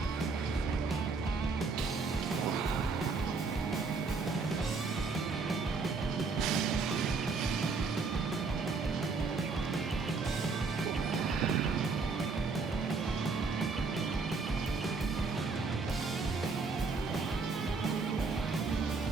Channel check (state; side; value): quieter; left; 4.3 dB